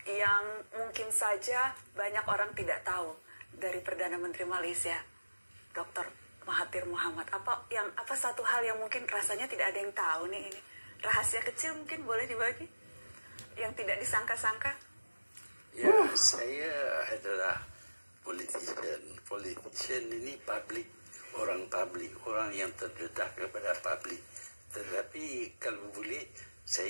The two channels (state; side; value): inverted; both; correlation -1.00